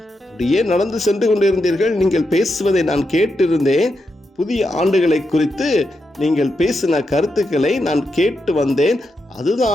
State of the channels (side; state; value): both; normal; correlation 0.85